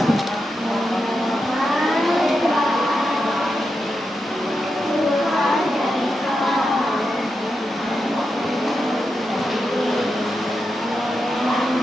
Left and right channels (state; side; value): normal; both; correlation 0.87